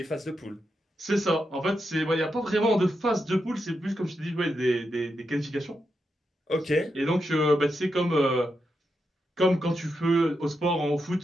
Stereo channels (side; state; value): both; normal; correlation 0.85